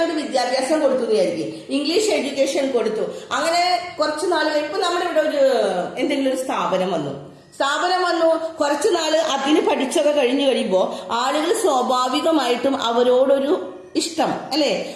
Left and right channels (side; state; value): both; identical; correlation 1.00